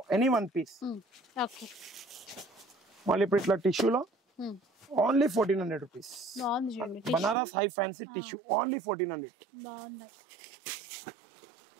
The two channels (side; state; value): left; drops out; at 7.4 s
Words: Any one piece. Okay. మళ్ళీ ఇప్పుడు ఇట్లా టిష్యూలో only 1400 rupees. Banaras high fancy tissue only 1400. బాగున్నాయి.